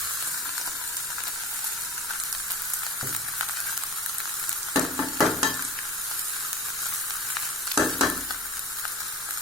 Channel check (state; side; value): normal; both; correlation 0.35